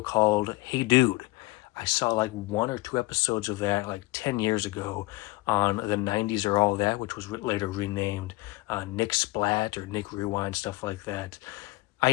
called Hey Dude. I saw like 1 or 2 episodes of that like 10 years ago on the 90s or All That, which was later renamed Nick Splat or Nick Rewind, stuff like that. I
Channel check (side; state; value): right; quieter; 21.1 dB